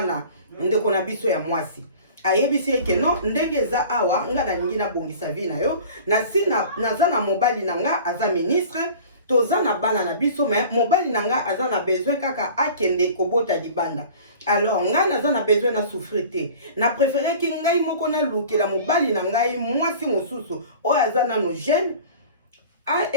ndeko na biso ya mwasi. Ayebisi ye ke non ndenge eza awa nga nalingi na bongisa vie na yo na si naza na mobali na nga aza ministre toza na bana na biso mais mobali na nga aza na besoin kaka akende kobota libanda. Alors nga naza na besoin na souffrir te. Na préféré ki ngai moko na lukela mobali na ngai mwasi mosusu oyo aza nano jeune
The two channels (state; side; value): inverted; both; correlation -0.42